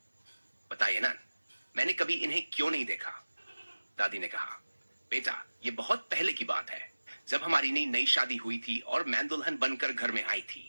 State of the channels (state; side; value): inverted; both; correlation -1.00